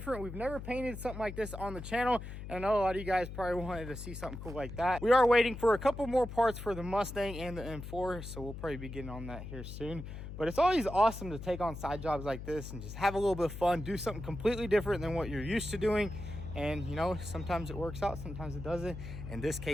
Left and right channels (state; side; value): noise; left; hum, 9 dB below the sound